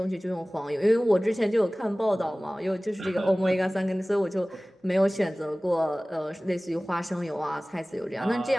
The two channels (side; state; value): both; normal; correlation 0.98